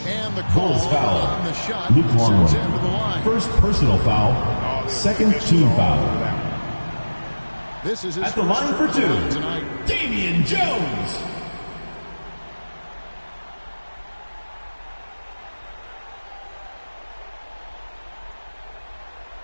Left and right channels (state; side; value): inverted; both; correlation -1.00